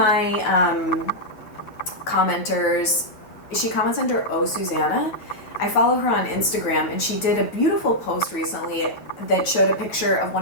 commenters, she comments under Oh Susanna. I follow her on Instagram, and she did a beautiful post recently that showed a picture of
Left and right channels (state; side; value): late; right; 9.3 ms